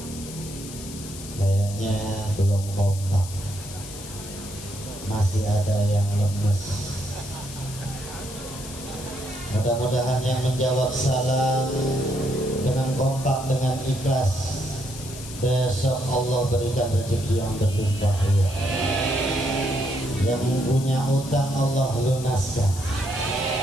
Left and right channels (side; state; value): left; noise; hiss, 13 dB below the sound